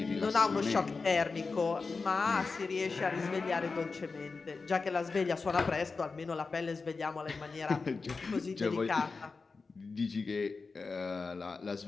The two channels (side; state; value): right; quieter; 4.3 dB